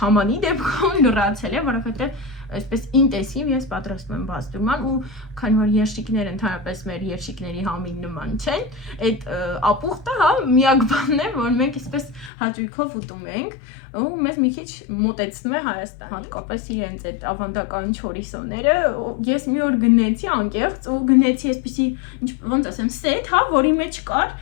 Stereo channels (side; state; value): right; drops out; at 12.3 s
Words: դեպքում լրացել է, որովհետեւ այսպես ինտենսիվ ես պատրաստում եմ բազդուրման ու քանի որ երշիկները ընդհանրապես մեր երշիկների համին նման չեն, այդ ապուխտը, հա, միակ բանն է, որ մենք այսպես հաճույքով ուտում ենք ու մեզ մի քիչ մոտեցնում է Հայաստան, հատկապես իրենց այդ ավանդական չորիսոները, ես մի օր գնեցի անկեղծ ու գնեցի այսպեսի, ոնց ասեմ, սեթ, հա, որի մեջ կար